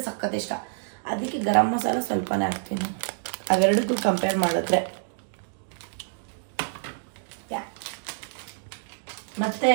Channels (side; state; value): left; silent; digital silence